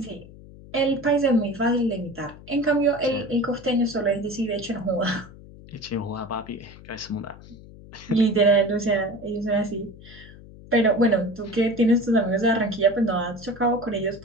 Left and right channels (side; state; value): left; noise; hum, 19 dB below the sound